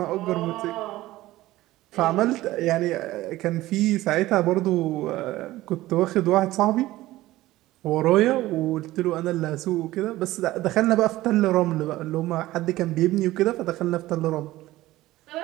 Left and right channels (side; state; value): left; quieter; 16.7 dB